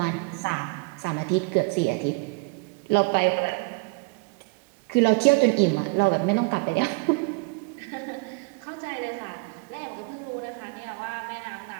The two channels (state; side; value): quieter; left; 29.9 dB